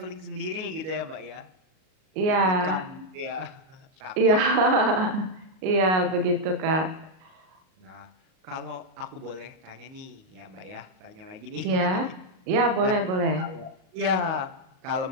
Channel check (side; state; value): left; late; 38 ms